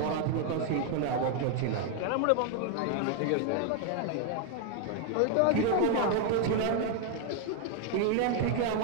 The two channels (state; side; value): different; both; correlation 0.01